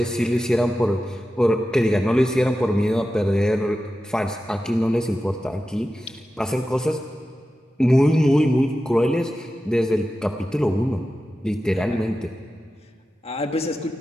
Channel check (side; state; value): both; normal; correlation 0.92